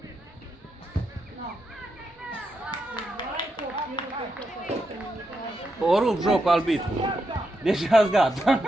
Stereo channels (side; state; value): both; normal; correlation 0.84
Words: O rup jocul arbitru. Deja-s gata.